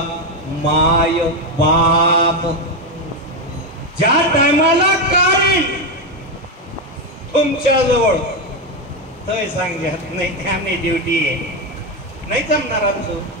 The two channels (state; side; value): normal; both; correlation 0.09